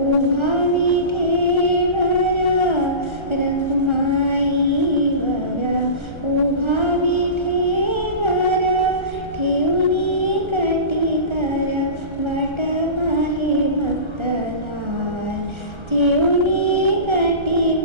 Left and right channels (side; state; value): left; late; 1.3 ms